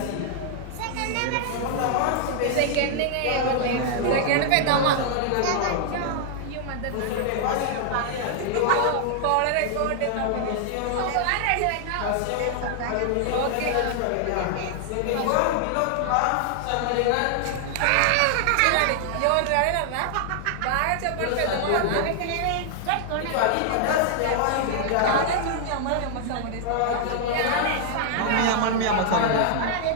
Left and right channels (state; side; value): different; both; correlation 0.00